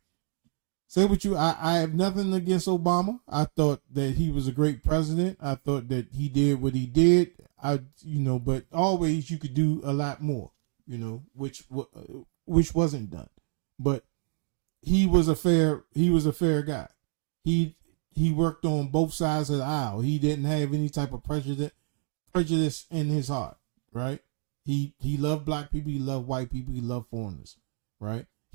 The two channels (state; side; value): silent; left; digital silence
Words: say what you. I have nothing against Obama. I thought that he was a great president. I thought that he did what he did. But always you could do a lot more. Which wasn't done. But he was a fair guy. He worked on both sides of the aisle. He didn't have any type of prejudice in his heart, right? He loved black people, he loved white people, he loved foreigners, right?